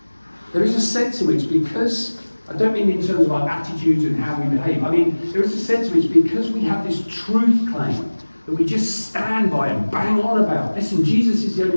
There is a sense in which, because, I don't mean in terms of our attitudes and how we behave, I mean, there is a sense in which because we have this truth claim that we just stand by and bang on about, listen, Jesus is the only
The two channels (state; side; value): inverted; both; correlation -1.00